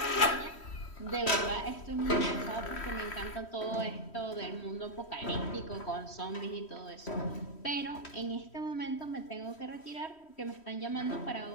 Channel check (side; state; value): right; late; 3.1 ms